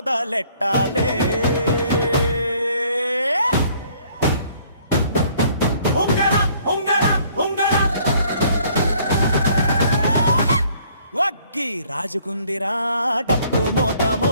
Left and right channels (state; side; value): inverted; both; correlation -0.60